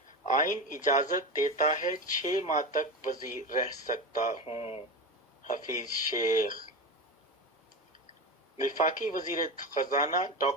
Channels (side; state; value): both; normal; correlation 0.22